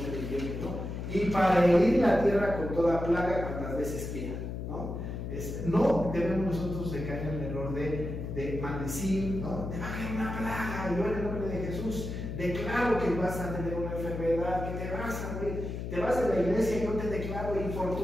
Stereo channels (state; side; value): noise; left; hum, 5 dB below the sound